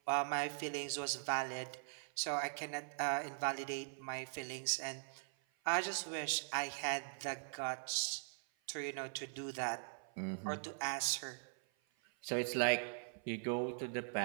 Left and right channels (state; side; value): silent; left; 50 dB below the other